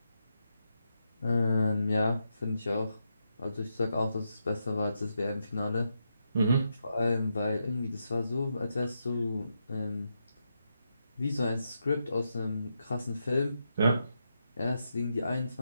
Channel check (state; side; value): inverted; both; correlation -0.84